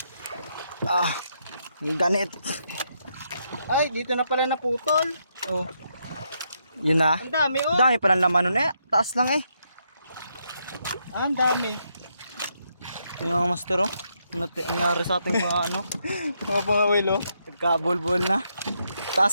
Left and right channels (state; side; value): inverted; both; correlation -0.78